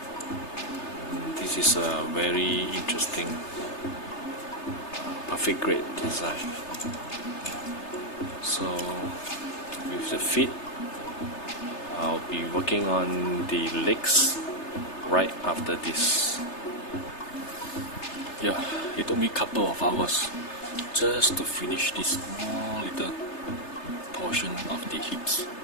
This is a very interesting perfect grade design. So with the feet, I'll be working on the legs right after this. Yeah, it took me a couple of hours just to finish this small little portion of the hips.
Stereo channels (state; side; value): late; right; 3.3 ms